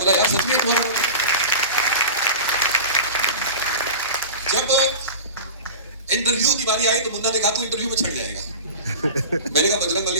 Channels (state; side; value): inverted; both; correlation -0.33